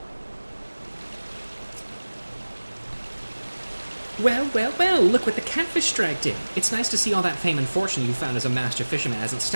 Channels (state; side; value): inverted; both; correlation -1.00